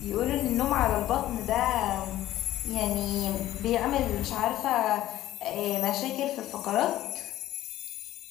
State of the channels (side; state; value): right; quieter; 14.1 dB